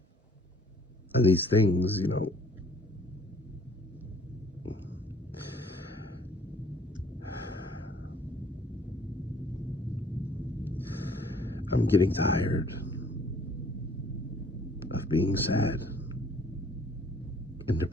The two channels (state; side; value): normal; both; correlation 0.58